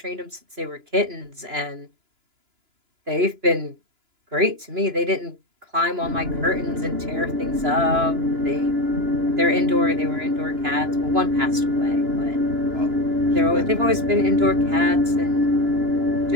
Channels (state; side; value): late; left; 2.9 ms